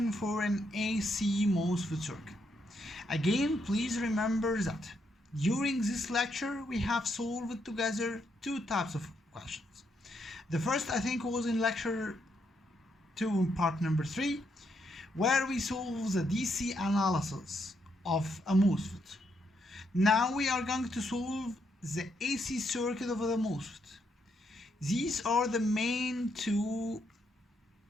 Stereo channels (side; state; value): both; normal; correlation 0.77